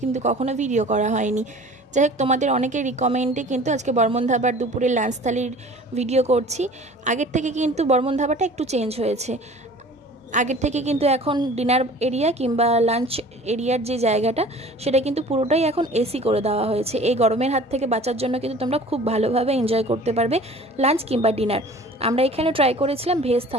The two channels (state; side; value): normal; both; correlation 0.45